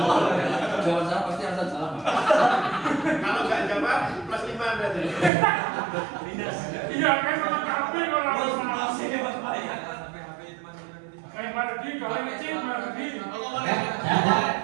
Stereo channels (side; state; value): left; drops out; at 5.3 s